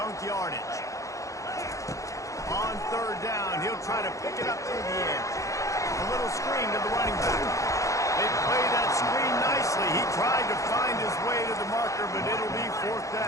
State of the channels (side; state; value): right; late; 0.15 ms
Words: yardage. On 3rd down, he'll try to pick it up through the edge. A little screen to the running back. They play that screen nicely. He tried to find his way to the marker, but it'll be 4th